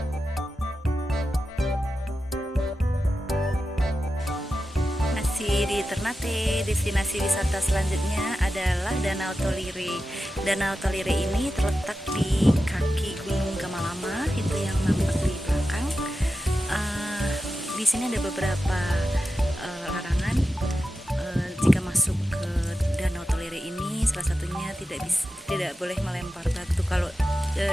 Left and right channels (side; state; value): both; normal; correlation 0.91